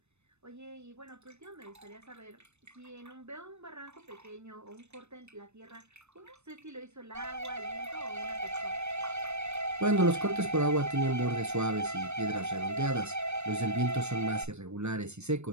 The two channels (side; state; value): left; late; 0.81 ms